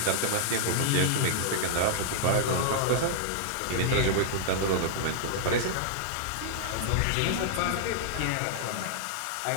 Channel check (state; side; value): different; both; correlation -0.01